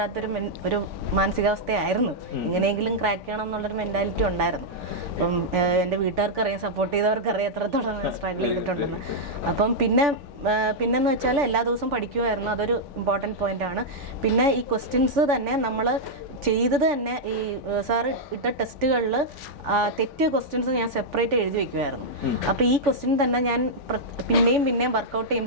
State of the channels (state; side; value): late; left; 3.5 ms